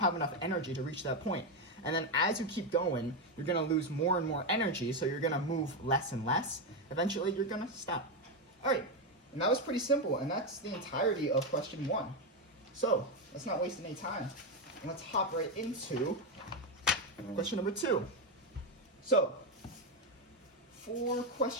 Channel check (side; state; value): both; normal; correlation 0.08